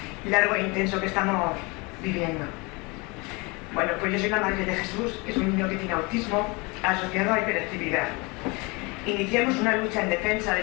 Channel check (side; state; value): right; quieter; 27.3 dB